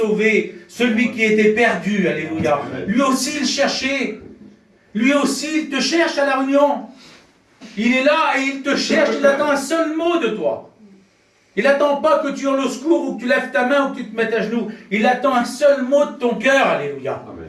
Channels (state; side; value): identical; both; correlation 1.00